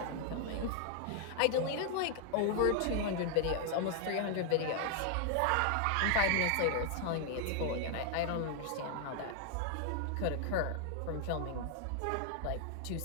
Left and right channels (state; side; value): different; both; correlation 0.00